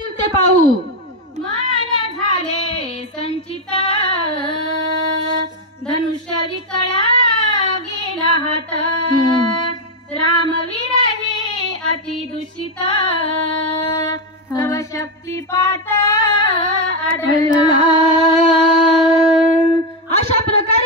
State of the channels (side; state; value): both; normal; correlation 0.07